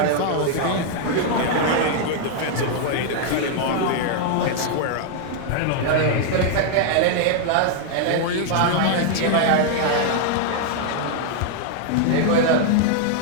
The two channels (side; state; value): both; different; correlation 0.00